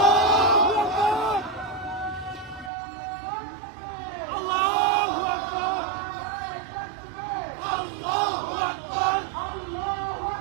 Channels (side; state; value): left; drops out; at 2.7 s